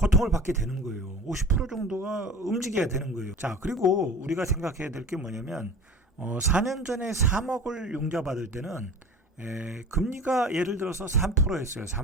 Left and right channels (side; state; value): both; normal; correlation 0.40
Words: 받게 되는 거예요. 50% 정도가 움직여야 되는 거예요. 자, 그리고 우리가 생각해야 될 게 뭐냐면 4년 전에 3억을 융자받을 때는 금리가 예를 들어서 3%였어요.